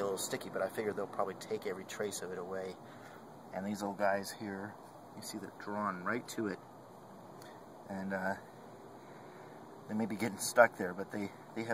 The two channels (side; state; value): both; identical; correlation 1.00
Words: little sticky, but I figured they'll probably take every trace of it away. And these little guys here, you see they're drawn right to it. And they may be getting stuck there, but they